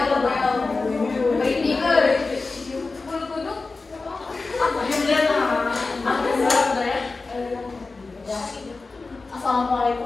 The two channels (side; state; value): right; quieter; 3.8 dB